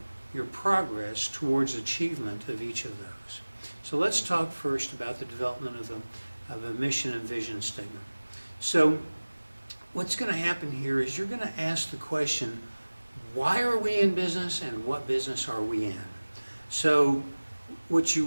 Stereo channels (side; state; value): both; inverted; correlation -1.00